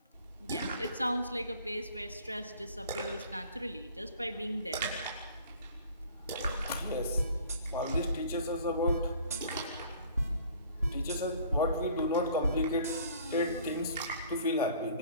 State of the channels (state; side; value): inverted; both; correlation -0.50